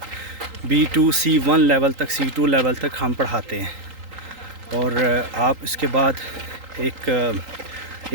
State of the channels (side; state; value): left; late; 3.8 ms